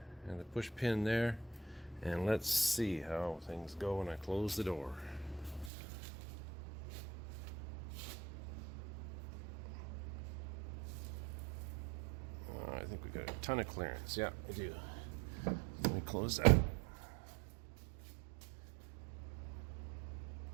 and the push pin there. And let's see how things go when I close the door. I think we got a ton of clearance. Yeah, we do. Let me close that.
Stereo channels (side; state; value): left; drops out; at 5.7 s